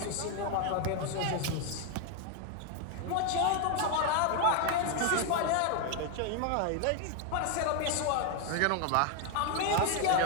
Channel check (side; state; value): both; different; correlation 0.01